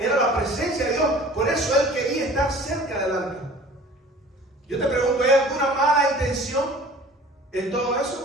la presencia de Dios. Por eso él quería estar cerca del arca. Yo te pregunto, ¿hay alguna mala intención en todo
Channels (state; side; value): normal; both; correlation 0.46